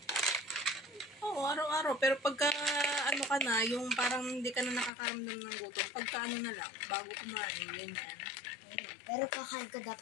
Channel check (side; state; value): right; drops out; at 4.9 s